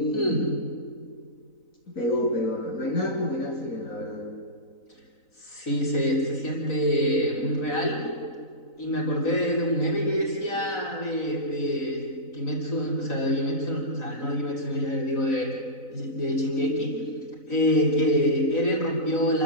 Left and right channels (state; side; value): late; right; 3.9 ms